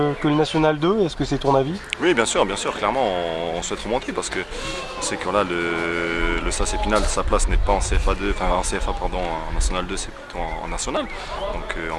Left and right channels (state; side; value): identical; both; correlation 1.00